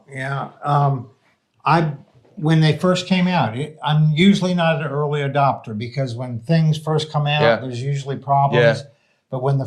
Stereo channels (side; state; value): both; identical; correlation 1.00